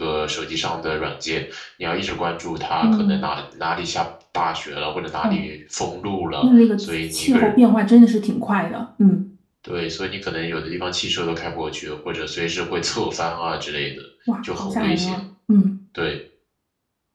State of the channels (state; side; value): identical; both; correlation 1.00